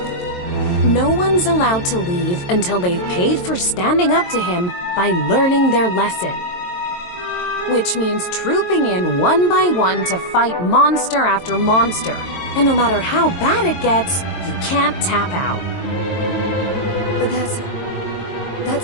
No one's allowed to leave until they've paid for standing up to him by learning their lesson. Which means trooping in one by one to fight monster after monster. And no matter how bad it gets, you can't tap out. But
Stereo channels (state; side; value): late; right; 22 ms